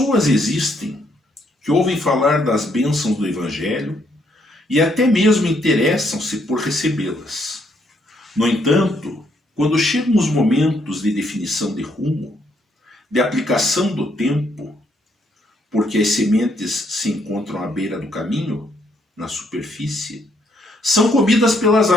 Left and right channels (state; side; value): normal; both; correlation 0.72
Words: existem que ouvem falar das bênçãos do Evangelho e até mesmo interessam-se por recebê-las. No entanto, quando chegam os momentos de definição de rumo, de aplicação do tempo, porque as sementes se encontram à beira do caminho, na superfície, são comidas pelas